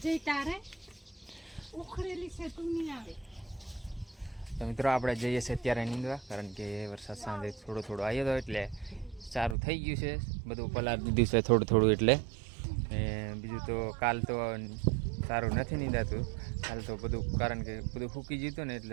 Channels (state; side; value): drops out; left; at 9.6 s